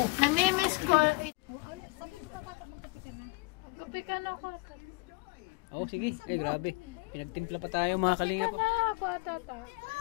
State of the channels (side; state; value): right; quieter; 24.9 dB